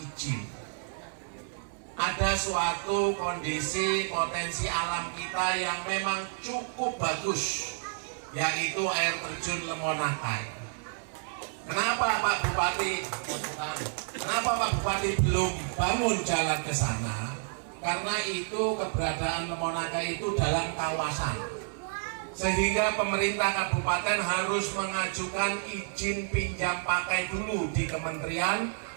Ada suatu kondisi potensi alam kita yang memang cukup bagus, yaitu air terjun Lemonakai. Kenapa Pak Bupati belum bangun jalan ke sana? Karena itu keberadaan Lemonakai itu dalam kawasan, sehingga pemerintah kabupaten harus mengajukan izin pinjam pakai dulu di Kementerian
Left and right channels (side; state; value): left; silent; 58 dB below the other